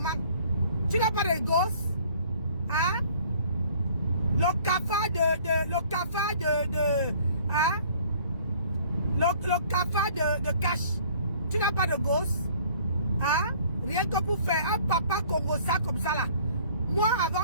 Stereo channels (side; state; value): both; inverted; correlation -0.55